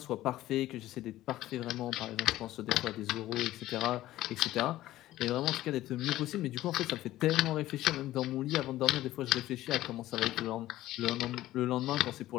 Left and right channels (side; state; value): right; quieter; 15.2 dB